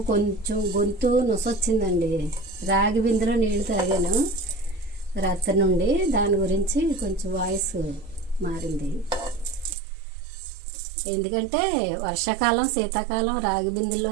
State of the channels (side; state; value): left; drops out; at 9.8 s